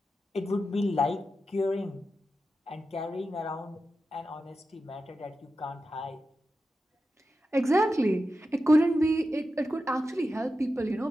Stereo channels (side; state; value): both; normal; correlation 0.91